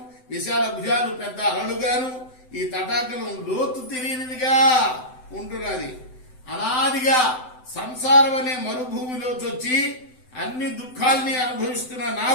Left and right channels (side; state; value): right; late; 7.9 ms